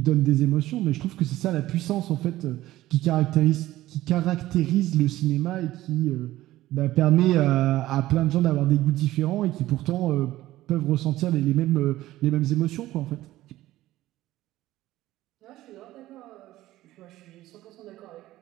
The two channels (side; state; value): left; quieter; 15.7 dB